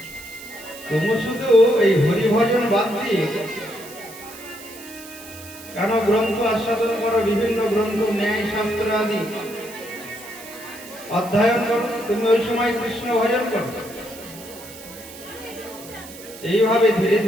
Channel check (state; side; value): noise; right; hiss, 16 dB below the sound